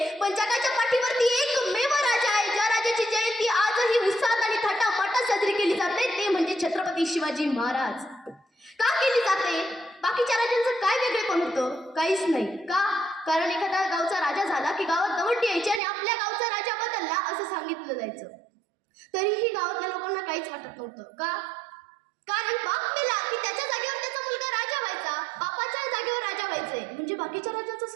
पण जगाच्या पाठीवरती एकमेव राजा आहे ज्या राजाची जयंती आजही उत्साहात आणि थाटामाटात साजरी केली जाते, ते म्हणजे छत्रपती शिवाजी महाराज. का केली जाते? बाकीच्या राजांचं काय वेगळेपण होतं? काहीच नाही. का? कारण एखादा गावचा राजा झाला की गावात दवंडी यायची आणि आपल्या गावचा राजा बदलला असं सांगितलं जायचं. तरीही गावातल्या लोकांना काहीच वाटत नव्हतं. का? कारण बाप मेला की त्याच्या जागेवर त्याचा मुलगा राजा व्हायचा, बापाच्या जागेवर राजा व्हायचंय. म्हणजे बाकीच्या राजांचं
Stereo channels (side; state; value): left; drops out; at 15.8 s